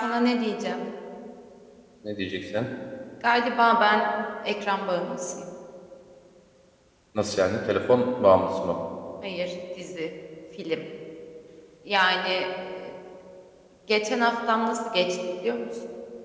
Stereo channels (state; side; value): identical; both; correlation 1.00